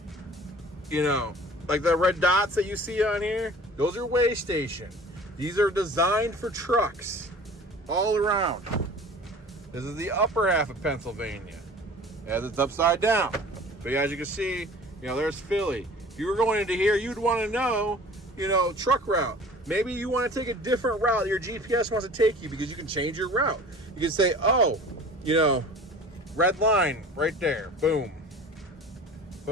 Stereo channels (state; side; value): normal; both; correlation 0.44